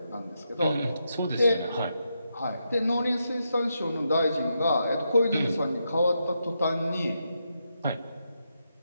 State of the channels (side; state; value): both; inverted; correlation -0.83